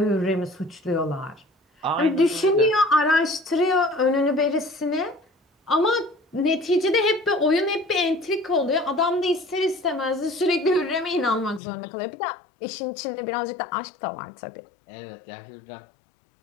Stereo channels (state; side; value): drops out; right; at 11.6 s